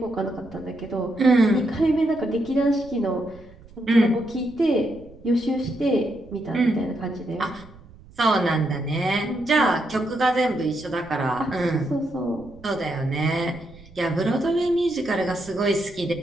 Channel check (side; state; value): right; noise; rumble, 22 dB below the sound